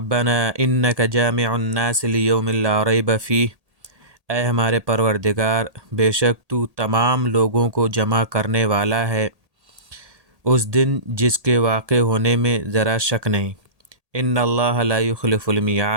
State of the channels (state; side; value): late; left; 1.8 ms